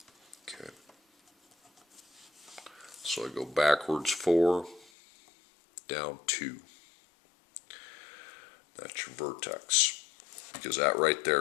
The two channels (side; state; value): right; drops out; at 4.9 s